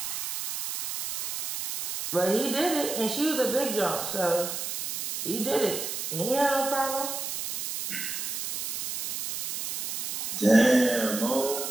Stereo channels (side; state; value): right; noise; hiss, 3 dB below the sound